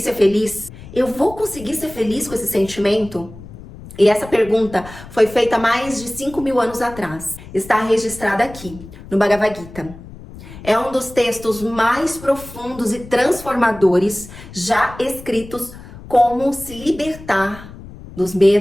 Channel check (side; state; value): left; noise; rumble, 16 dB below the sound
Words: feliz? Eu vou conseguir ser feliz com esse sentimento? E essa pergunta foi feita mais de 5.000 anos atrás. Está registrada aqui, no Bhagavad Gita. É um dos textos mais profundos e transformadores já escritos. Como se libertar dos